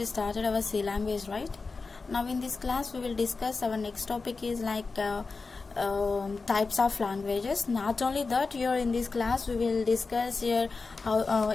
started our C language, right? Now in this class we will discuss our next topic is types of languages. Not only that, here in this class we will discuss here how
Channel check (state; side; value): quieter; right; 4.2 dB